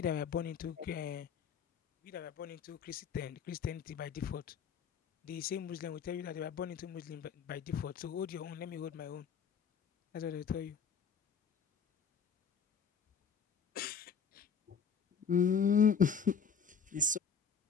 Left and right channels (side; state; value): right; quieter; 6.4 dB